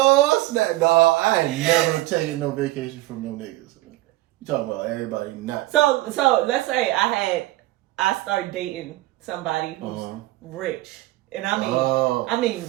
snap! No, I ain't never taking no vacation from no niggas. You talking about everybody not? So let's say I start dating somebody who's rich, and I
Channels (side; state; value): left; quieter; 18.1 dB